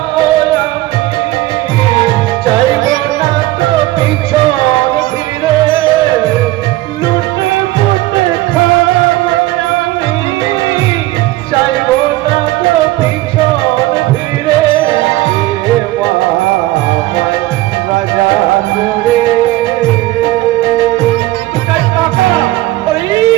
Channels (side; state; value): left; quieter; 17.7 dB